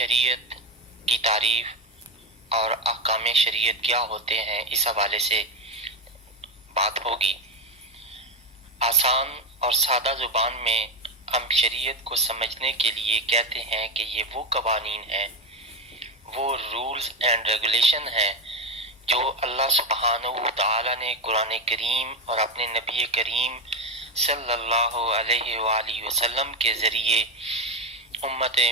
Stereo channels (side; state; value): both; normal; correlation 0.13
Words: کی تعریف اور احکام شریعت کیا ہوتے ہیں اس حوالے سے بات ہوگی۔ آسان اور سادہ زبان میں ہم شریعت کو سمجھنے کے لیے کہتے ہیں کہ یہ وہ قوانین ہیں، وہ رولز اینڈ ریگولیشن ہیں جو اللہ سبحانہ وتعالی نے قرآن کریم اور اپنے نبی کریم صلی اللہ علیہ وآلہ وسلم کے ذریعے امت